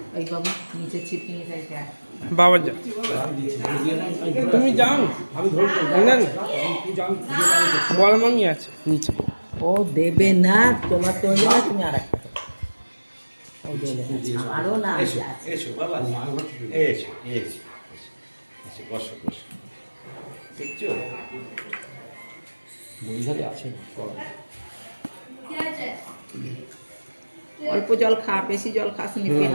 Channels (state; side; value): inverted; both; correlation -1.00